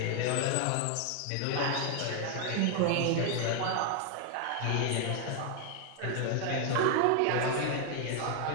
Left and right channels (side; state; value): both; different; correlation 0.00